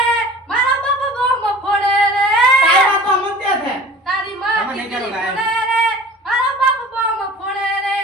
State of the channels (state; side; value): normal; both; correlation 0.43